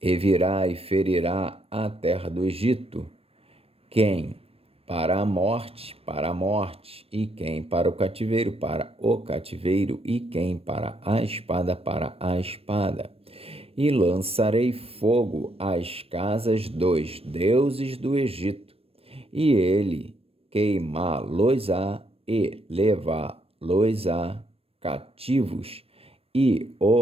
E virá e ferirá a terra do Egito, quem para a morte, e quem para o cativeiro, e quem para a espada. E lançarei fogo às casas dos deuses do Egito, e ele queimá-los-á e levá-los-á cativos, e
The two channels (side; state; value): left; late; 0.28 ms